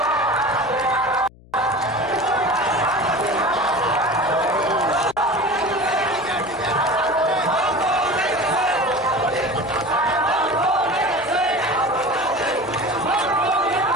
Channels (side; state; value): left; noise; hum, 24 dB below the sound